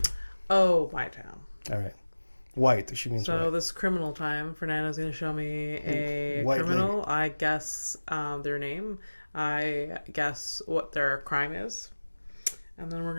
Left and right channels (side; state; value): both; inverted; correlation -1.00